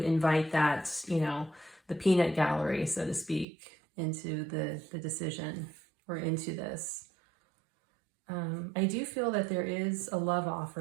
invite that, the peanut gallery, so to speak, into the decision or into this. I do feel that there is a love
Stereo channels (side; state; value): left; drops out; at 3.5 s